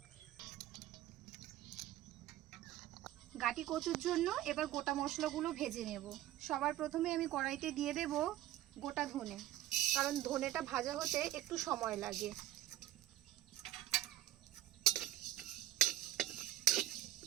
গাটি কচুর জন্য এবার গোটা মশলাগুলো ভেজে নেব। সবার প্রথমে আমি কড়াইতে দিয়ে দেব গোটা ধনে, কারণ ধনেটা ভাজা হতে একটু সময় লাগে।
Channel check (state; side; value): quieter; left; 14.3 dB